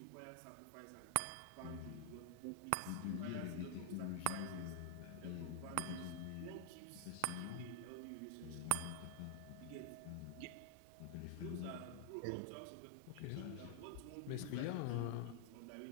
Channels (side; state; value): both; different; correlation 0.00